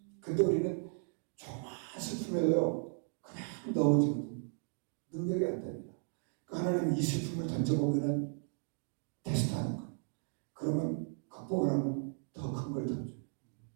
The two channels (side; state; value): left; silent; 54 dB below the other